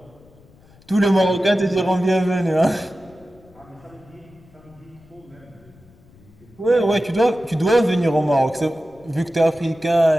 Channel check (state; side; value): noise; left; rumble, 27 dB below the sound